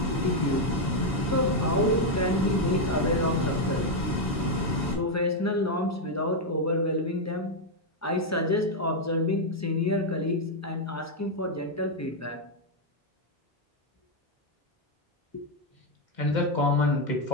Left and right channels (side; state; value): both; normal; correlation 0.01